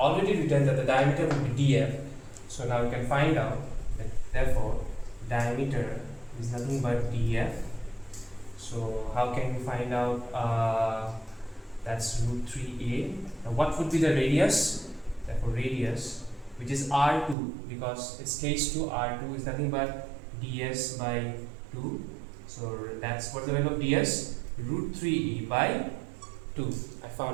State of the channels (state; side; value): drops out; left; at 17.4 s